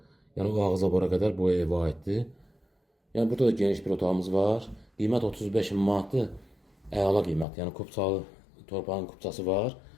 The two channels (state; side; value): drops out; right; at 7.5 s